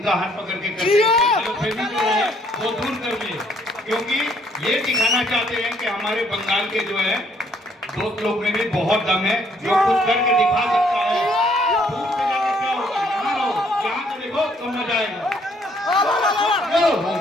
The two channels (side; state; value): both; normal; correlation 0.66